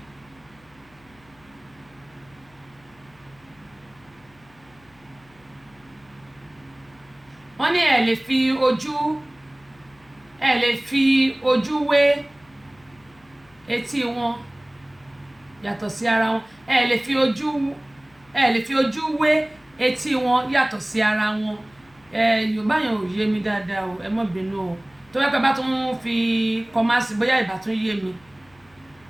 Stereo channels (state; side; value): noise; left; hum, 29 dB below the sound